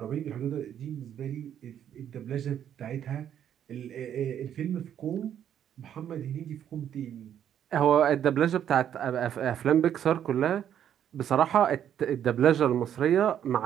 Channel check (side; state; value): left; quieter; 9.8 dB